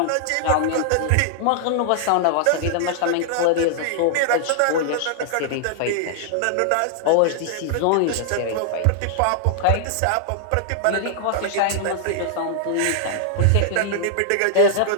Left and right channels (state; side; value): different; both; correlation -0.01